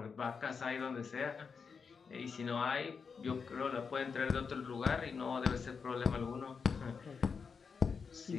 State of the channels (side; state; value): right; quieter; 5.6 dB